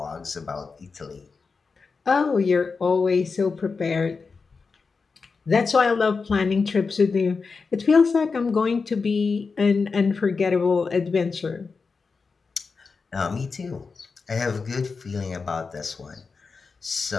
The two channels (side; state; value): right; quieter; 4.7 dB